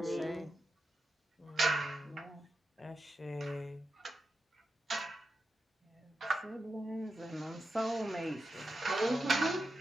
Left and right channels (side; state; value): both; normal; correlation 0.88